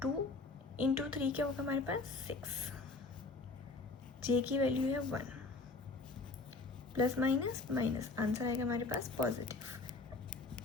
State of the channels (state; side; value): quieter; right; 3.6 dB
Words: 2 इंटू 3 क्या होगा हमारे पास 6, जे की वैल्यू है 1, प्लस माइनस माइनस, आंसर आएगा हमारे पास पॉजिटिव